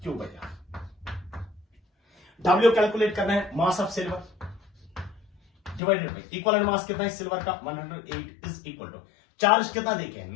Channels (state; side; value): drops out; right; at 5.8 s